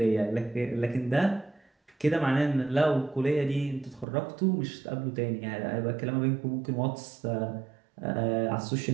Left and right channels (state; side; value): drops out; left; at 4.0 s